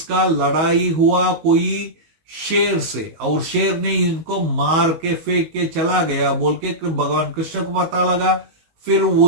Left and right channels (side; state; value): left; late; 19 ms